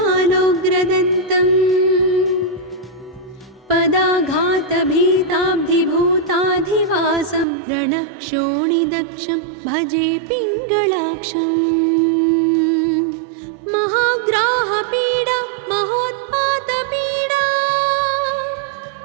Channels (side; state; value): left; drops out; at 7.5 s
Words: पदाघातभीताब्धिभूताधिवासं रणक्षोणिदक्षं भजे पिङ्गळाक्षम् महाग्राहपीडा महोत्पातपीडा